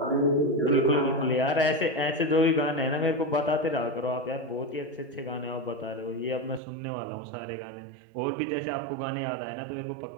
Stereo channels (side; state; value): left; drops out; at 6.6 s